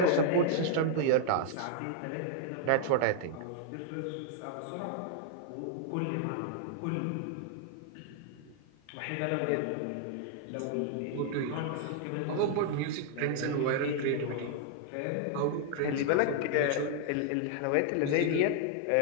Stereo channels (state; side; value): different; both; correlation 0.00